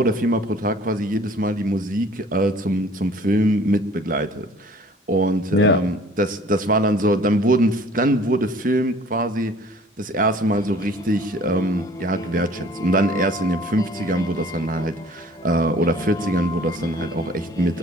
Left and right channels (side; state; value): both; normal; correlation 0.52